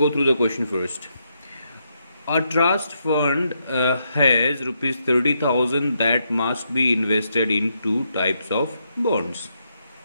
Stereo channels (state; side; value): inverted; both; correlation -0.79